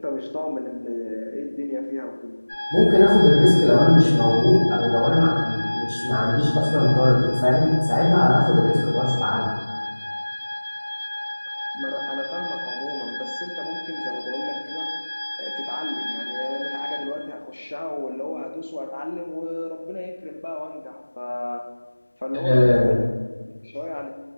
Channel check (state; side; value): inverted; both; correlation -1.00